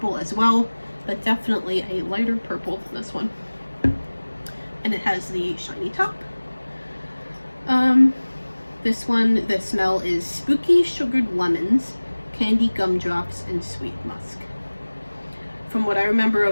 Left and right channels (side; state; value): both; inverted; correlation -1.00